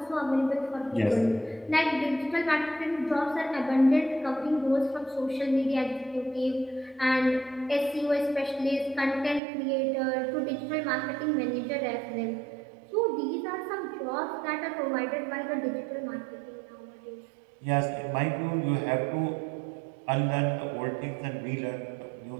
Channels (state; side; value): drops out; left; at 9.4 s